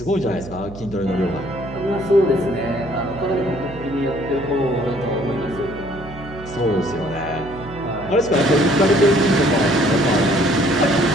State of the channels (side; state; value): right; noise; hum, 15 dB below the sound